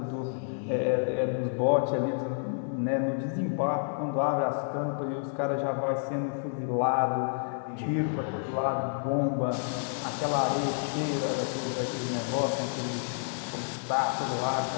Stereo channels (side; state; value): right; silent; digital silence